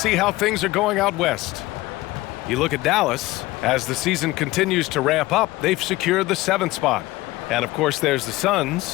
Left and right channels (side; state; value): right; quieter; 18.8 dB